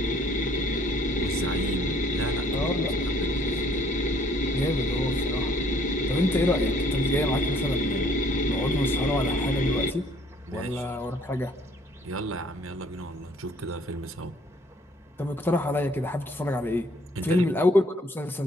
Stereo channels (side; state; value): both; normal; correlation 0.60